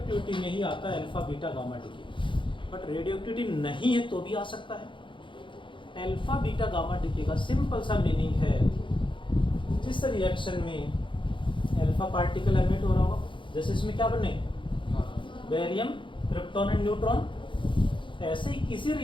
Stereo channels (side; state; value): right; late; 0.24 ms